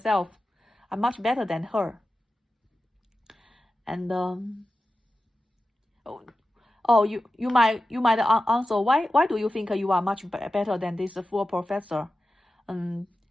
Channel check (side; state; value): both; normal; correlation 0.93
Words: I'm much better than her. And you might answer, why do you think you are much better than this full professor?